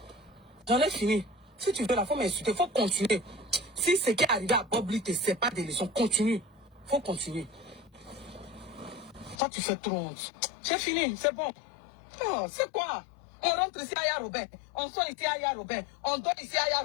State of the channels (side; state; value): right; drops out; at 9.4 s